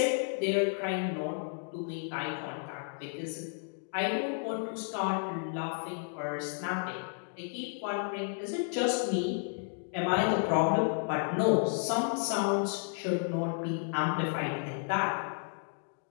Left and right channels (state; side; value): silent; right; 56 dB below the other